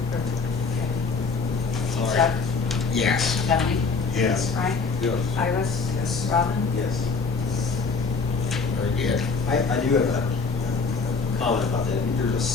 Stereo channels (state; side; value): quieter; right; 4.5 dB